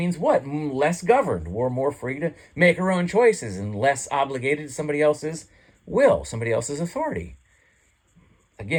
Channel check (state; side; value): identical; both; correlation 1.00